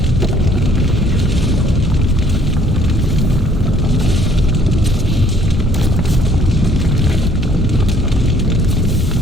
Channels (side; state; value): both; normal; correlation 0.62